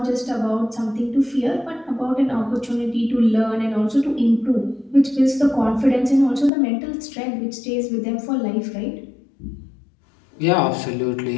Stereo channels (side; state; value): right; drops out; at 6.5 s